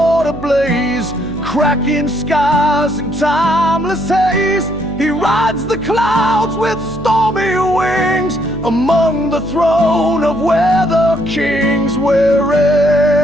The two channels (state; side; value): noise; right; hum, 13 dB below the sound